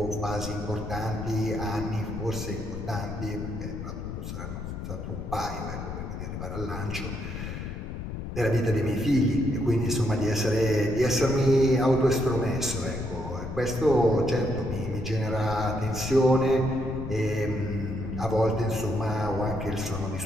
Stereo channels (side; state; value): left; noise; rumble, 7 dB below the sound